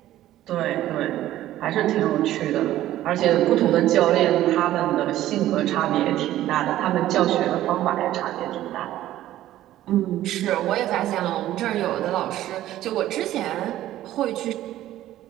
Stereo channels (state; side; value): quieter; left; 13.8 dB